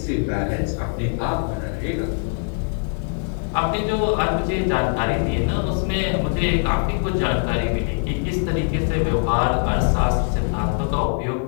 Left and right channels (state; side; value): silent; right; 60 dB below the other